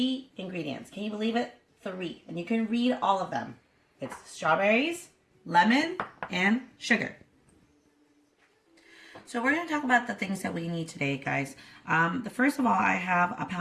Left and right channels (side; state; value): both; identical; correlation 1.00